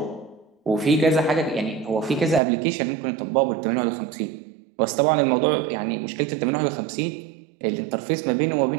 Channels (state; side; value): drops out; left; at 2.4 s